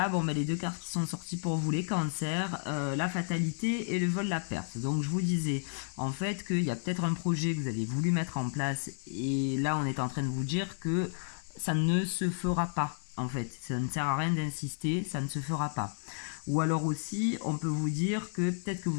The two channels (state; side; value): silent; right; 56 dB below the other